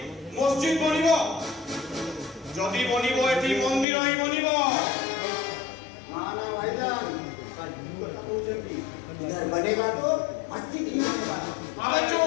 ମସଜିଦ ବନିବ ଯଦି ବନିବ ଏଠି ମନ୍ଦିର ହିଁ ବନିବ ना ना भाईजान सच्ची কথা বলছেন इधर बनेगा तो मस्जिद ही बनेगा अबे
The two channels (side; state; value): right; drops out; at 3.9 s